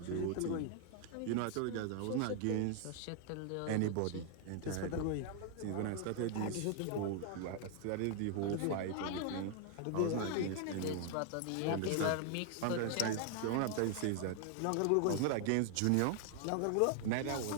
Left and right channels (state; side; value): different; both; correlation 0.00